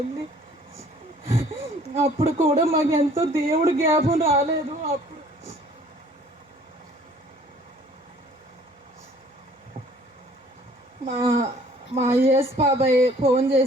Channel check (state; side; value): normal; both; correlation 0.55